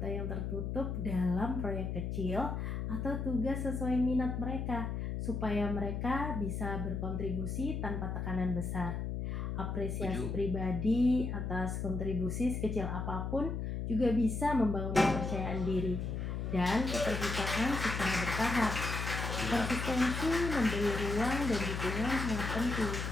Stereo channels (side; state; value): left; noise; hum, 3 dB below the sound